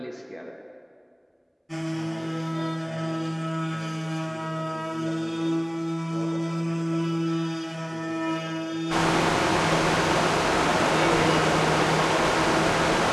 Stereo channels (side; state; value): both; identical; correlation 1.00